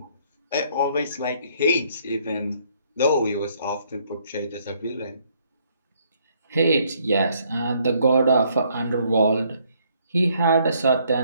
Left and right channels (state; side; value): inverted; both; correlation -0.67